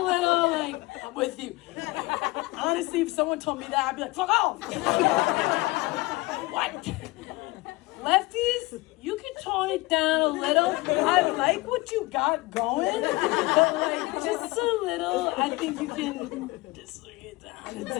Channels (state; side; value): quieter; right; 21.9 dB